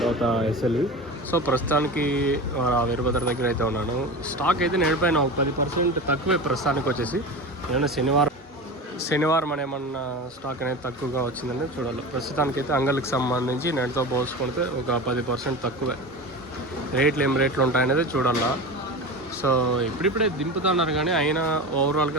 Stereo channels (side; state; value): both; normal; correlation 0.28